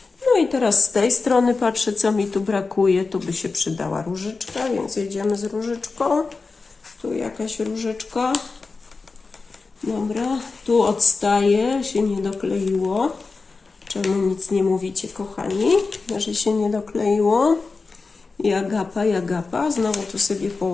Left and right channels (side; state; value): right; quieter; 4.1 dB